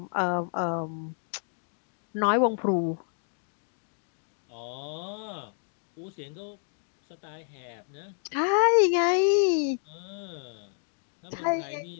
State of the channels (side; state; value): right; silent; 58 dB below the other